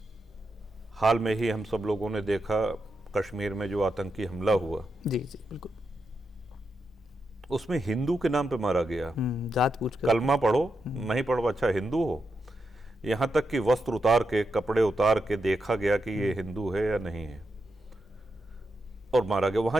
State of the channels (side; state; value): both; normal; correlation 0.86